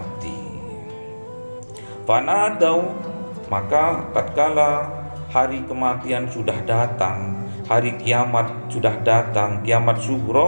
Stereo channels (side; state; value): both; inverted; correlation -1.00